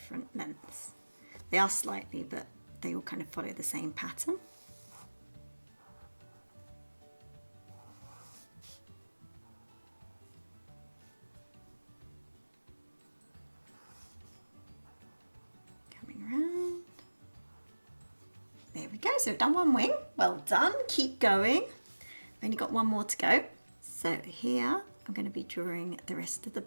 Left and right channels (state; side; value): inverted; both; correlation -1.00